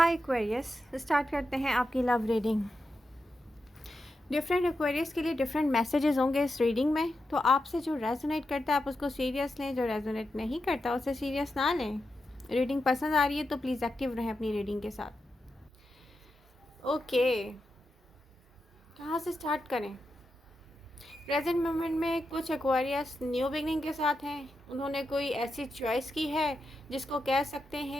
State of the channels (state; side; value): normal; both; correlation 0.88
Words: Aquarius, start करते हैं आपकी लव रीडिंग। डिफरेंट एक्वेरियस के लिए डिफरेंट मैसेजेस होंगे इस रीडिंग में, तो आपसे जो रेजोनेट करता है आप उसको सीरियस लें, जो रेजोनेट नहीं करता उसे सीरियस ना लें। रीडिंग पसंद आ रही है तो प्लीज़ एक्टिव रहें अपनी रीडिंग के साथ। ओके, कहाँ से स्टार्ट करें? प्रेजेंट मोमेंट में कुछ एक्वेरियस न्यू बिगनिंग के साथ हैं। उन्होंने कोई ऐसी चॉइस की है जिसको कह सकते